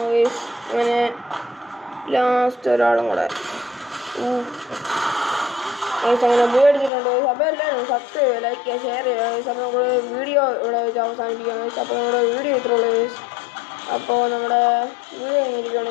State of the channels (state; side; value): drops out; right; at 6.9 s